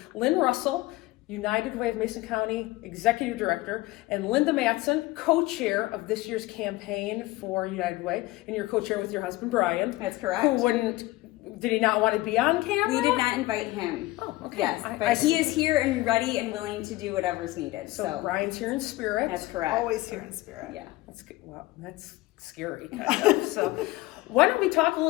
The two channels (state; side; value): quieter; right; 19.1 dB